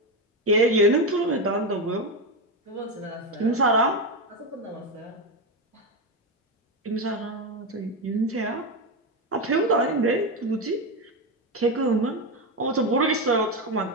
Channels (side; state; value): both; normal; correlation 0.12